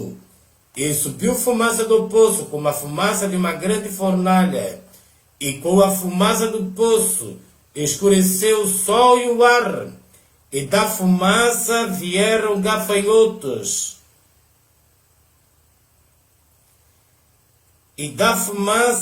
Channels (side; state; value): both; identical; correlation 1.00